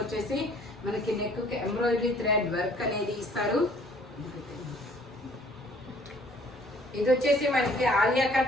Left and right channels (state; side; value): normal; both; correlation 0.57